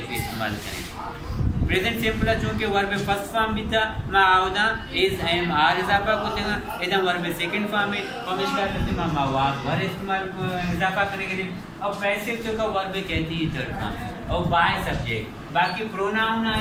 भी इस्तेमाल करें प्रेजेंट सिंपल चूंकि वर्ब में फर्स्ट फॉर्म भी था मैं आवदा इज एम आर इजाफा को देगा इधर वर्ब में सेकंड फॉर्म है पमिश का करते मैं वाज वर इस्तेमाल इजाफा करने के लिए अब पैसे तो का वर्ब कहती है थर्ड फॉर्म और बाय सब्जेक्ट बाकी प्रोनाउन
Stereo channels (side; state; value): both; identical; correlation 1.00